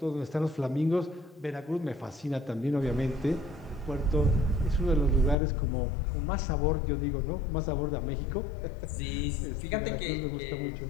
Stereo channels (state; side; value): drops out; right; at 5.4 s